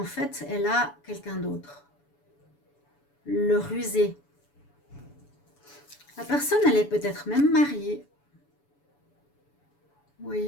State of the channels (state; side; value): late; right; 7.0 ms